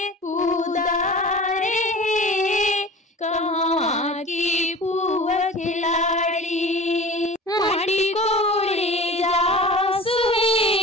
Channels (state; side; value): normal; both; correlation 0.38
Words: उदारे कहाँ की पुआ खिलाड़ी माटी कोड़े जासु